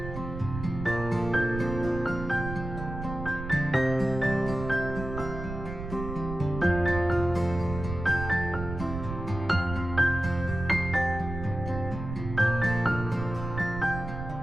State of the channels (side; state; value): right; noise; rumble, 8 dB below the sound